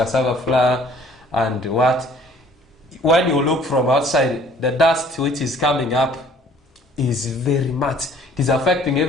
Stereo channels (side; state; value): both; normal; correlation 0.56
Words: flour and what. When you look from outside, the dust which is coming up is very much. It is affecting